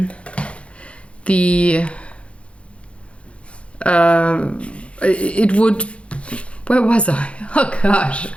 it would. Where was I? Oh gosh,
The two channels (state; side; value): late; right; 0.061 ms